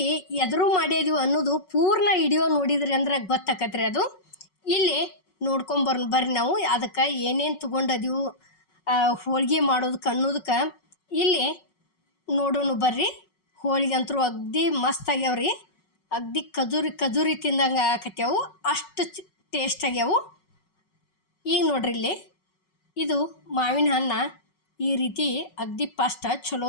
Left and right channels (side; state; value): right; late; 5.4 ms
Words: ಎದುರು ಮಾಡಿದ್ವಿ ಅನ್ನೋದು ಪೂರ್ಣ ವಿಡಿಯೋ ನೋಡಿದ್ರಿ ಅಂದ್ರೆ ಗೊತ್ತಾಕತ್ರಿ. ಅದು ಇಲ್ಲಿ ಬರ್ರಿ ನಾವು ಅದಕ್ಕೆ ಏನೇನು ತೊಗೊಂಡದೀವು ಹೋಳ್ಗೆ ಮಾಡೋದಕ್ಕೆ ಅನ್ನೋದಕ್ಕೆ ಇಲ್ಲಿ ನೋಡೋಣ ಬರ್ರಿ. ಹೋಳಿಗೆ ಅಂತೂ ಅಗ್ದಿ ಮಸ್ತ್ ಆಗ್ಯಾವ್ರಿ, ಅಗ್ದಿ ಖಜೂರಿ ತಿಂದಂಗೆ ಆಕತ್ಯಾವು, ಅಷ್ಟು ಟೇಸ್ಟ್ ಆಗ್ಯಾವು. ಈಗ ನೋಡ್ರಿ ಇಲ್ಲಿ ಇದು ಮಾವಿನ ಹಣ್ಣು ಈ ರೀತಿ ಅಗ್ದಿ ಫಸ್ಟ್ ಚಲೋ